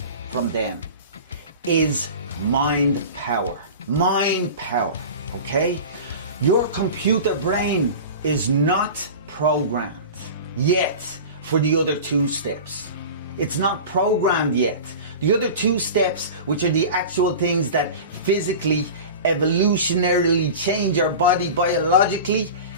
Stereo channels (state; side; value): inverted; both; correlation -0.33